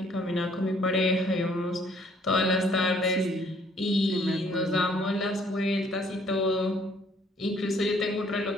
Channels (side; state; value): both; normal; correlation 0.61